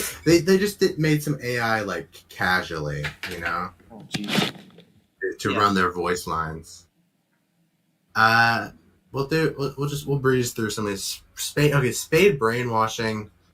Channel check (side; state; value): both; identical; correlation 1.00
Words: they did. They just made some AI like casually, you know, Oh jeez. to Yeah. run their voice lines. We'll breeze through some of these Spade brainwashing.